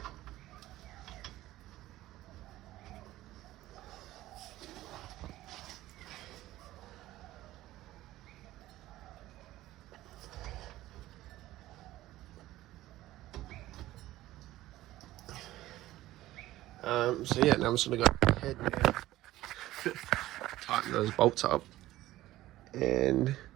So yeah, now I'm just gonna go ahead and tighten those bolts up, and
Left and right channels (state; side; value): quieter; left; 15.7 dB